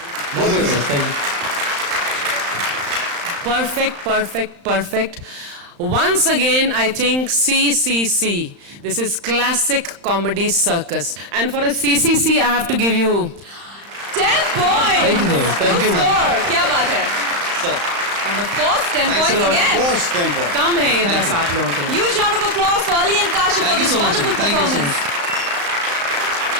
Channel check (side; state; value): left; late; 35 ms